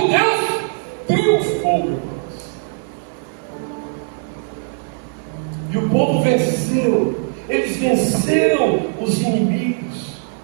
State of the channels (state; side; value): silent; left; 63 dB below the other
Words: Deus triunfou, irmãos. E o povo venceu. Eles venceram os inimigos.